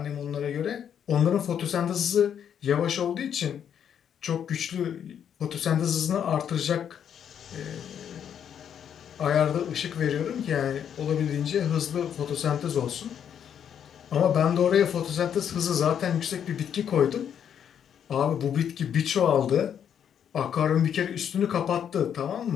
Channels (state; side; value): quieter; right; 8.7 dB